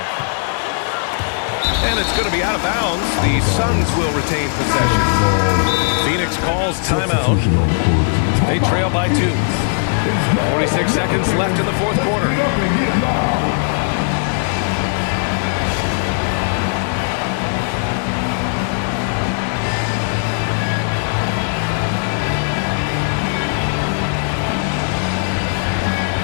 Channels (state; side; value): silent; right; 67 dB below the other